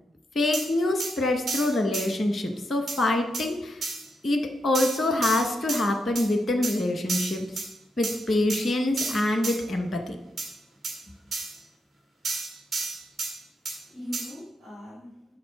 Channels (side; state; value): both; normal; correlation 0.83